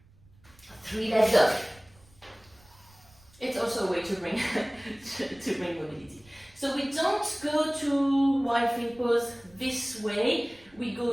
3-leg dog. It's also a way to bring to bring mobility. So we don't go to wide feet pose this way. We go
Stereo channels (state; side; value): noise; right; rumble, 28 dB below the sound